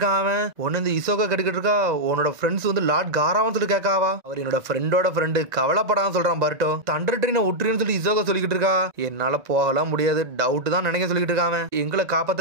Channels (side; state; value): left; late; 1.9 ms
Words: ஒன்னு இந்த இசோகா கேட்டுக்கிட்டு இருக்கா, உன்னோட ஃப்ரெண்ட்ஸ் வந்து லார்ட் காராவான்னு சொல்லி கேட்காவா. அவர் என்னோட ஃப்ரெண்டோட ஃப்ரெண்டு, கவலைப்படாம சொல்றான் பர்ட்டோ. தண்டர் ட்ரெயினை விட்டுருன்னு சொல்லி இசோகா சொல்லிக்கிட்டு இருக்கா. என்னால போகலாம் முடியாது, டவுட் தான் நினைக்க சொல்லிட்டு இருக்காங்க. எங்களை